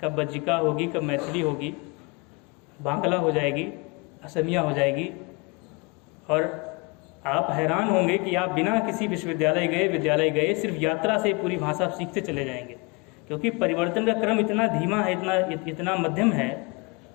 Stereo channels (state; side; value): quieter; right; 28.2 dB